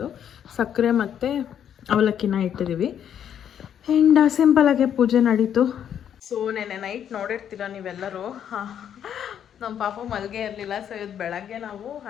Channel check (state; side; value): quieter; right; 9.3 dB